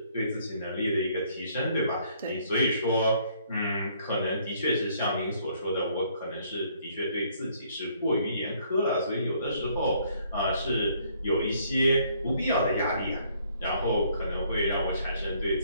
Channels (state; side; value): inverted; both; correlation -0.65